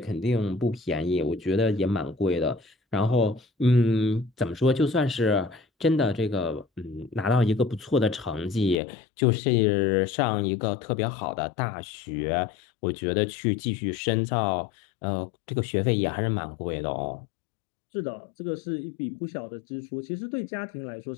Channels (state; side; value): drops out; right; at 8.8 s